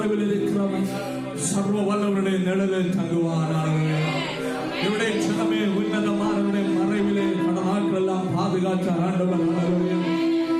இருக்கிறவன் சர்வ வல்லவருடைய நிழலில் தங்குவான். இவருடைய ஜனமே உன்னதமானவருடைய மறைவிலே பல நாட்கள் எல்லாம் பாதுகாக்க ஆண்டவர்.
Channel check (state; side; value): identical; both; correlation 1.00